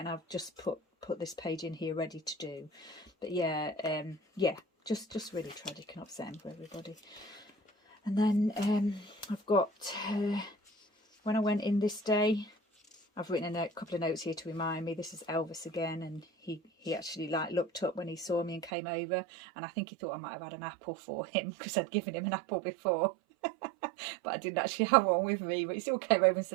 I've just put this page in here ready to do. But yeah, yeah, just really tragic and upsetting for everybody. And then I've got when I went in this day, I've written a couple of notes here to remind me. This is Elvis again, and he actually like looked up when he saw me and came over, and I think he thought I might have had an apple for him because I'd given him an apple before. But I didn't actually have one with me, but he still came over and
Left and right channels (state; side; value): drops out; left; at 18.7 s